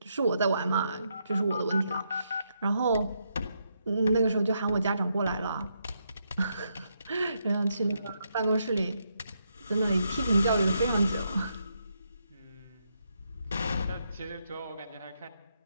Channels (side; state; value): both; inverted; correlation -0.79